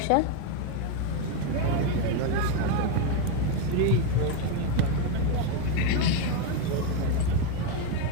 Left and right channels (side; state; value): both; different; correlation 0.02